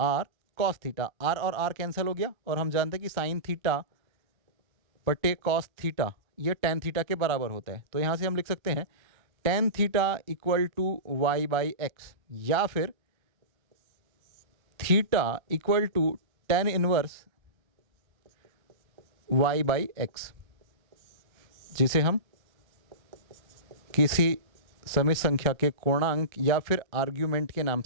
cos theta. r और r कैंसिल हो गया, और हम जानते हैं कि साइन थीटा बटे कॉस थीटा ये टेन थीटा के बराबर होता है। तो यहाँ से हम लिख सकते हैं tan theta equal to y by x, या फिर theta equal to tan inverse y by x, जिसे हम किसी समित संख्या के कोणांक या फिर आर्ग्यूमेंट के नाम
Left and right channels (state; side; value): late; left; 1.2 ms